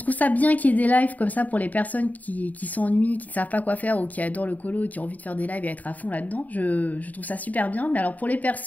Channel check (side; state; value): right; late; 0.075 ms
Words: ça bien qu'il y ait des lives comme ça pour les personnes qui s'ennuient, qui ne savent pas quoi faire ou qui adorent le colo et qui ont envie de faire des lives et être à fond là-dedans. Je trouve ça super bien. Mais alors pour les